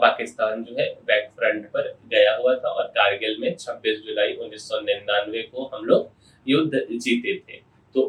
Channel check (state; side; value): identical; both; correlation 1.00